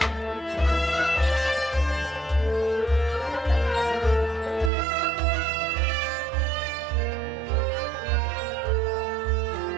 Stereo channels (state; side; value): drops out; left; at 4.7 s